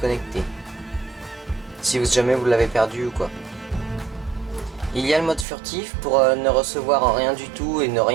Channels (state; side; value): drops out; left; at 5.5 s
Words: Si jamais vous l'avez perdu ou quoi. Il y a le mode furtif pour ne recevoir rien du tout et ne